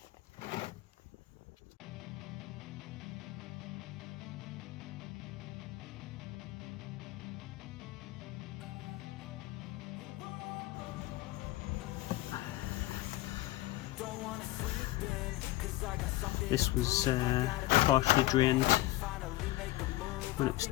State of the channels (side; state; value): right; quieter; 17.3 dB